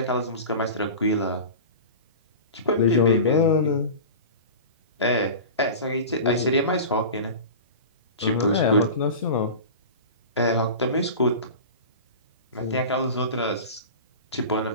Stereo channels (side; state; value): both; inverted; correlation -0.32